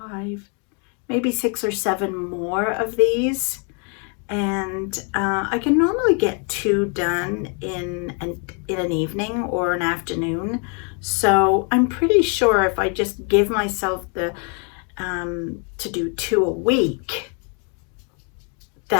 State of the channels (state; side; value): quieter; right; 38.2 dB